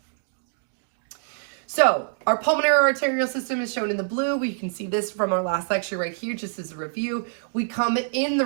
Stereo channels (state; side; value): silent; left; digital silence